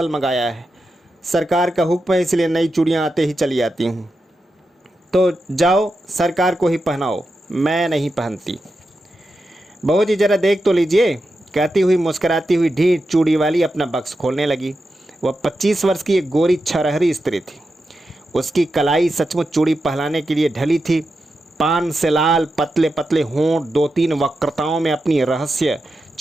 मंगाया है, सरकार का हुक्म है इसलिए नई चूड़ियां आते ही चली आती हूँ। तो जाओ सरकार को ही पहनाओ, मैं नहीं पहनती। बहू जी जरा देख तो लीजिए, कहती हुई मुस्कुराती हुई ढीठ चूड़ी वाली अपना बक्स खोलने लगी। वह 25 वर्ष की एक गोरी छरहरी स्त्री थी। उसकी कलाई सचमुच चूड़ी पहनाने के लिए ढली थी। पान से लाल पतले पतले होंठ 2-3 वक्रताओं में अपनी रहस्य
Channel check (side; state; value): both; normal; correlation 0.89